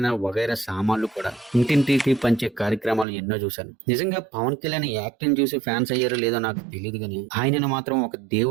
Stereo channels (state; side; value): drops out; left; at 3.1 s